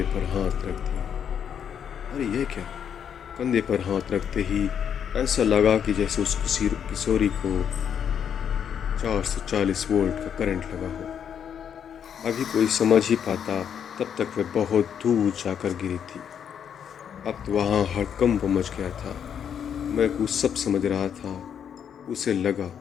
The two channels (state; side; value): quieter; right; 8.3 dB